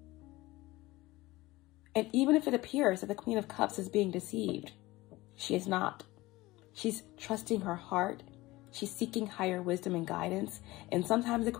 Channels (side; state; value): right; quieter; 19.5 dB